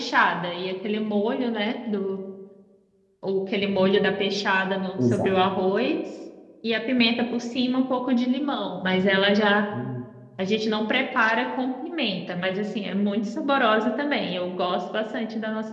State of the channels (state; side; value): identical; both; correlation 1.00